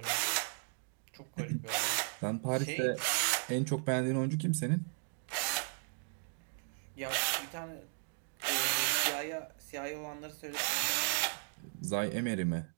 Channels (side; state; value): left; silent; 54 dB below the other